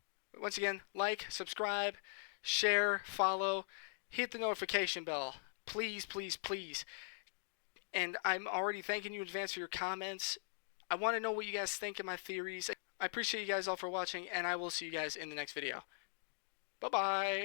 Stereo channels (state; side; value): silent; right; digital silence